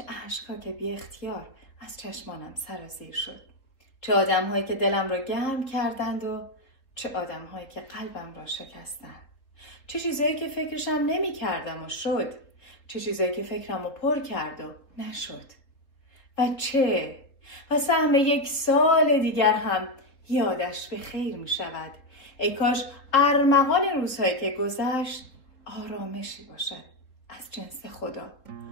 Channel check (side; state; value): right; late; 4.0 ms